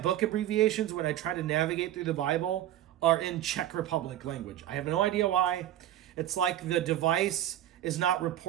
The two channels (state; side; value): quieter; left; 12.6 dB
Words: abbreviations when I try to navigate through the Bible are in Czech Republic language. I have no idea why. It's like the device is not